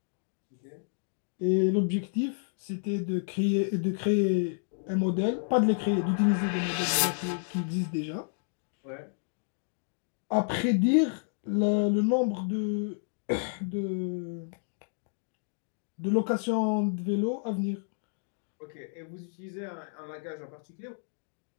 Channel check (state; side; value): silent; right; digital silence